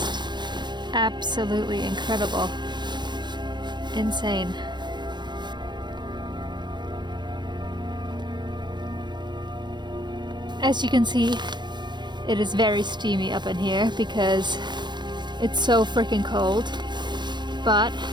absolutely incredible. Insane. As you can see, it is very steamy up in here because it's so freaking cold. But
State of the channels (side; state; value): left; late; 0.21 ms